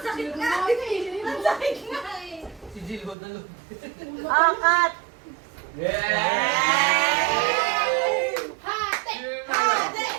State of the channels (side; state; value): left; drops out; at 3.2 s